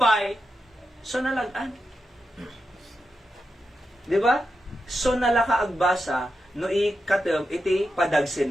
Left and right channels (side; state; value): both; normal; correlation 0.88